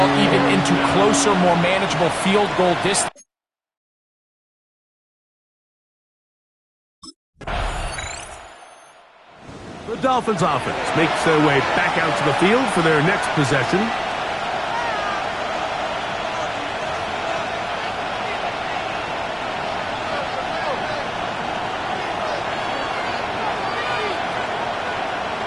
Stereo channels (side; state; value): both; identical; correlation 1.00